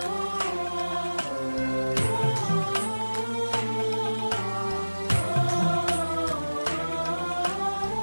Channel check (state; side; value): inverted; both; correlation -1.00